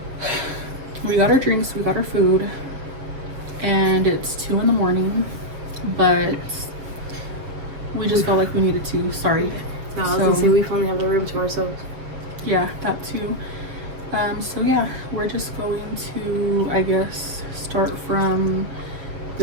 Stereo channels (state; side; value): late; left; 7.3 ms